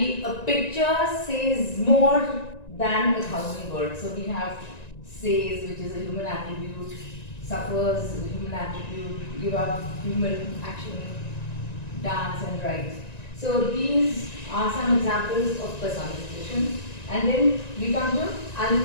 a picture says more than 1,000 words. So we have says, which is a human attribute, suffers is a human attribute, give up, human action, dance and write. So these are some examples of personification. And then we come to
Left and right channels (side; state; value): right; late; 1.9 ms